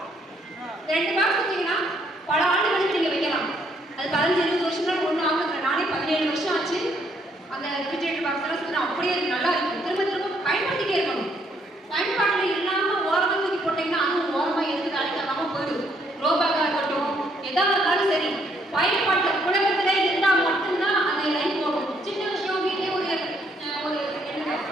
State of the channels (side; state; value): both; normal; correlation 0.70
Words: 2 பாக்ஸ் வச்சீங்கன்னா பல ஆண்டுகளுக்கு நீங்க வைக்கலாம். அது 15-20 வருஷம் ஒன்றும் ஆகுது. நானே 17 வருஷம் ஆச்சு. அந்த ரெஃப்ரிஜரேட்டர் பாக்ஸ் எல்லாம் சொன்னா அப்படியே நல்லா இருக்கும். திரும்ப திரும்ப பயன்படுத்திட்டே இருக்கணும். பயன்பாட்டில் இல்லாம ஓரமாக தூக்கி போட்டீங்கன்னா அதுவும் ஓரமா எதுக்கு அழைக்காம போயிடும். ரோபாக்கா இருக்கட்டும், எதா இருந்தாலும் சரி, பயன்பாட்டில் புழக்கத்திலே இருந்தால் மட்டும்தான் அந்த லைஃப் போகும். சின்ன விஷயம் வீட்டிலே ஒரு